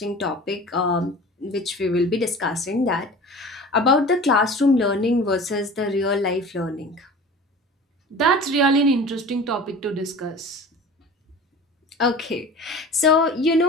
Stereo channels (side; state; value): both; normal; correlation 0.39